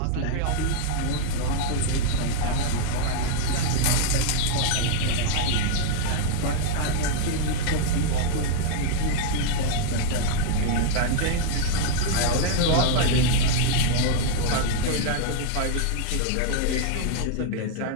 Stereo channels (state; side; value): different; both; correlation 0.00